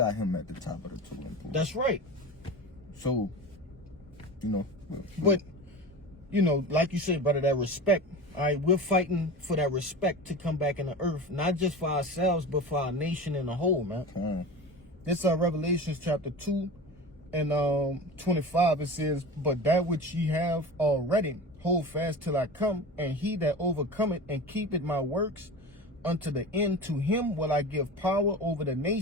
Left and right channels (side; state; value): both; normal; correlation 0.31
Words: him at the top of the totem pole. That's right. So, you know. But, you know, like you said, brother, that respect. All right, we're fighting for that respect to come back in the earth, not just for ourselves, but for our nation in the whole, man. This Revelations chapter 2 and 25, it says, "But that which ye have already, hold fast till I come, and he that overcometh and keepeth my works unto the end, to him will I give power over the